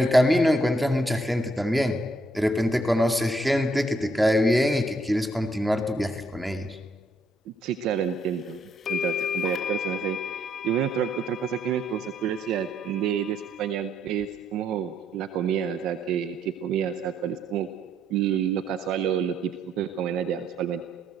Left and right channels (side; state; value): both; normal; correlation 0.71